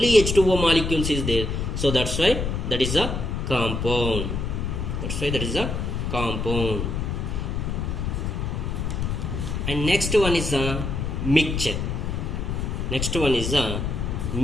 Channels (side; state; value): left; noise; rumble, 2 dB below the sound